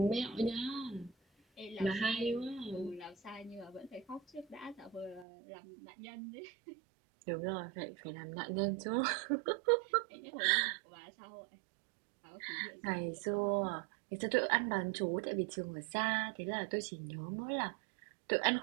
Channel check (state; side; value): drops out; left; at 5.2 s